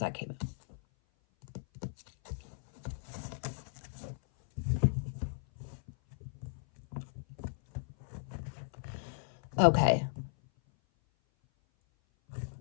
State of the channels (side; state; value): right; silent; 54 dB below the other